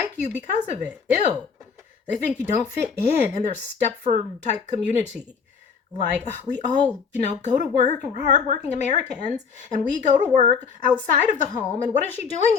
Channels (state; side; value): quieter; right; 5.9 dB